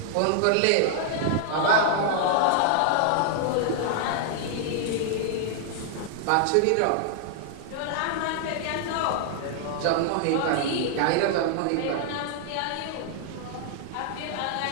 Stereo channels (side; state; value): both; different; correlation 0.00